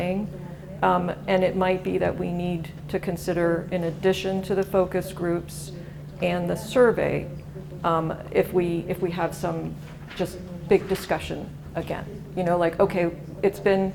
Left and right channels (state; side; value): identical; both; correlation 1.00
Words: And it might be that we need to consider, in addition to the focus groups and the survey, if we have some just big discussion again. You know, like, okay, it's been